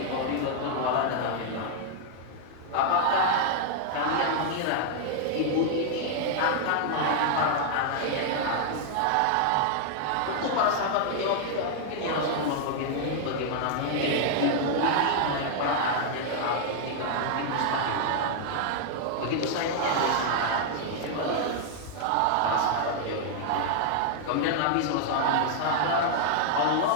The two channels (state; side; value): different; both; correlation 0.00